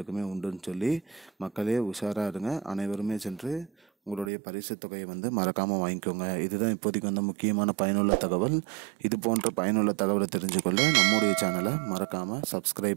உண்டுன்னு சொல்லி மக்களே உஷாராக இருங்க. அனைவருமே சென்று உங்களுடைய பரிசு தொகையை மறக்காமல் வாங்கிக்கோங்க. இதுதான் இப்போதைக்கு முக்கியமான பயனுள்ள தகவல். இது போன்ற பயனுள்ள தகவலை தெரிஞ்சுக்கொள்ள நம்முடைய சேனலை மறக்காமல்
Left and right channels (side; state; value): left; drops out; at 4.3 s